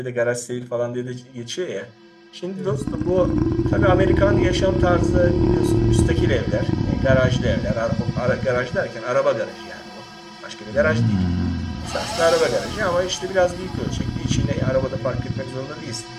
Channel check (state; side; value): identical; both; correlation 1.00